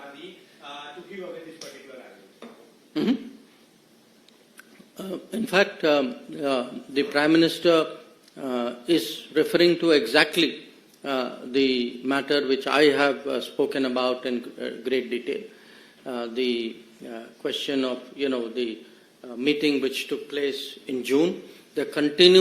to give away this particular island. Mm-hmm. In fact, the Prime Minister is referring to exactly the matter which I have spoken about in great detail. The question of, the meeting which took place in June, the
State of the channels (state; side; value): identical; both; correlation 1.00